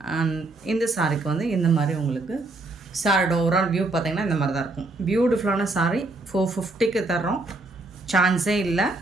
அண்ட் இந்த சாரிக்கு வந்து இந்த மாதிரி உங்களுக்கு சாரியோட ஓவரால் வியூ பார்த்திங்கன்னா இந்த மாதிரி தான் இருக்கும். பியூட்டிஃபுல்லான சாரி 450க்கு தர்றோம், சான்ஸே இல்லை.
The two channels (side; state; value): left; quieter; 3.1 dB